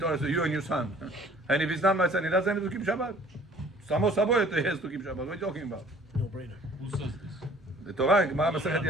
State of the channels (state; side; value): normal; both; correlation 0.53